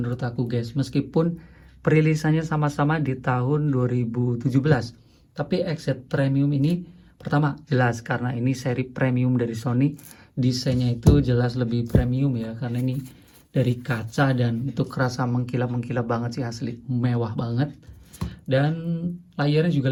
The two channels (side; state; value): both; identical; correlation 1.00